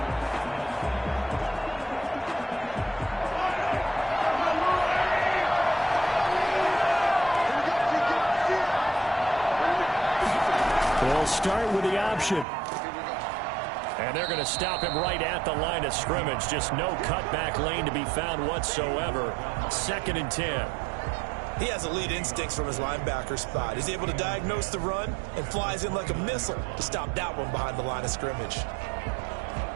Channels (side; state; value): left; drops out; at 12.5 s